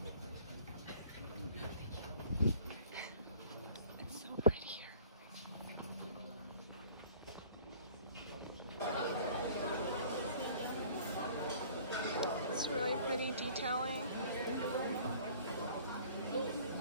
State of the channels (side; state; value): both; inverted; correlation -0.50